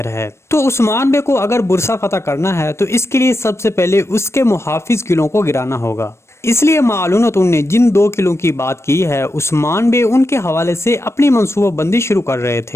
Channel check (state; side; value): late; right; 0.13 ms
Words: ہے، تو عثمان بے کو اگر برسا فتح کرنا ہے تو اس کے لیے سب سے پہلے اس کے محافظ قلعوں کو گرانا ہوگا۔ اس لیے معلومات نے جن دو قلعوں کی بات کی ہے، عثمان بے ان کے حوالے سے اپنی منصوبہ بندی شروع کر رہے